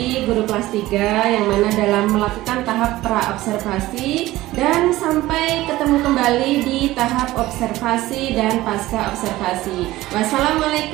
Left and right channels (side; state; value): left; quieter; 17.1 dB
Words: guru kelas 3 yang mana dalam melakukan tahap pra-observasi dan sampai ketemu kembali di tahap observasi dan pasca observasi.